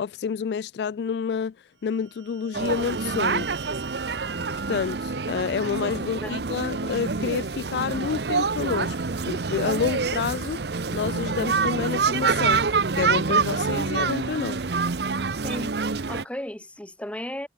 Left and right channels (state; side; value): normal; both; correlation 0.00